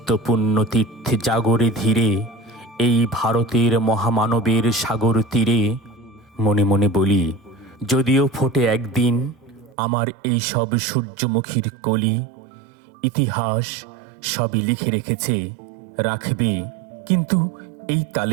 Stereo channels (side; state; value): left; drops out; at 9.8 s